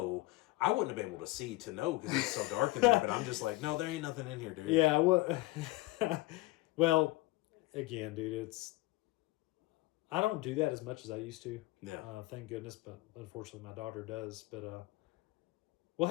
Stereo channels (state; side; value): quieter; right; 20.3 dB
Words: I wouldn't have been able to see to know because it's so dark in there. But I'm just like, no, there ain't nothing in here, dude. Yeah, well, again, dude, I don't do that as much as I used to. Yeah. Thank goodness, but unfortunately my daughter does. But we'll